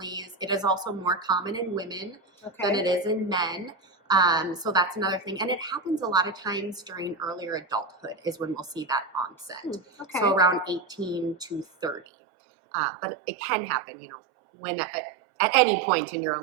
It is also more common in women than it is in men. So that's another thing. And it happens a lot of times during earlier adulthood is when we'll see that onset. So around 18 to 30. But it can happen, you know, when at any point in your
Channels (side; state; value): left; drops out; at 12.1 s